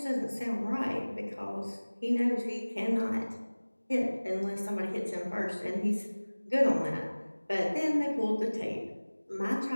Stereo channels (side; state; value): both; inverted; correlation -1.00